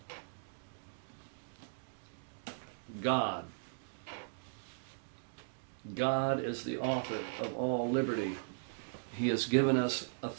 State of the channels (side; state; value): left; silent; digital silence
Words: God. God is the author of all liberty. He has given us